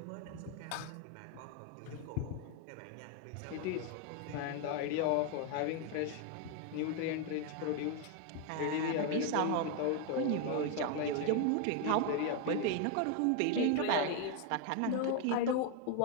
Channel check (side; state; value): both; different; correlation 0.01